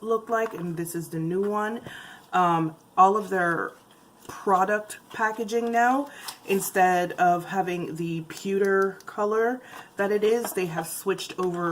looked like and this is the new one. All of their product packaging now, instead of having the pewter color that it is, they have switched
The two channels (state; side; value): identical; both; correlation 1.00